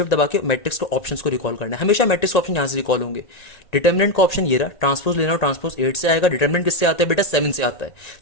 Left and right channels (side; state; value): right; late; 1.8 ms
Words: दबा के मैट्रिक्स के ऑप्शंस को रिकॉल करना है। हमेशा मैट्रिक्स ऑप्शन यहाँ से रिकॉल होंगे। डिटर्मिनेंट का ऑप्शन ये रहा, ट्रांसपोज लेना हो, ट्रांसपोज 8 से आएगा। डिटर्मिनेंट किससे आता है बेटा, 7 से आता है।